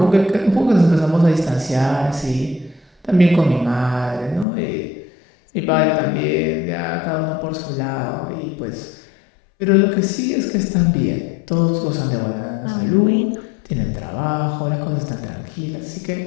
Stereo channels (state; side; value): drops out; right; at 4.5 s